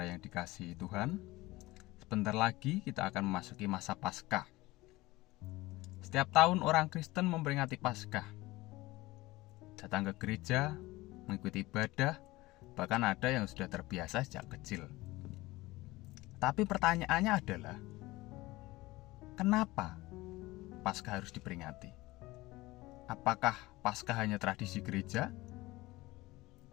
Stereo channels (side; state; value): right; quieter; 19.8 dB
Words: yang dikasihi Tuhan. Sebentar lagi kita akan memasuki masa Paskah. Setiap tahun orang Kristen memperingati Paskah. Datang ke gereja, mengikuti ibadah, bahkan ada yang sudah terbiasa sejak kecil. Tapi pertanyaannya adalah, kenapa Paskah harus diperingati? Apakah Paskah hanya tradisi gereja?